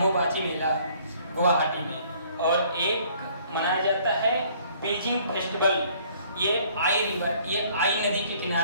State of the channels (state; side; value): inverted; both; correlation -0.59